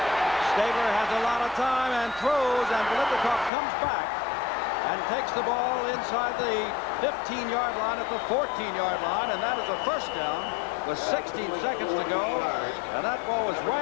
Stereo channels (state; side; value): drops out; right; at 3.5 s